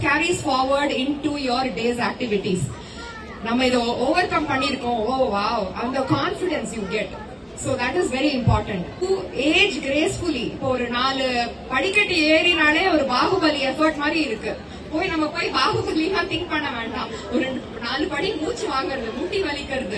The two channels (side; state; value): both; identical; correlation 1.00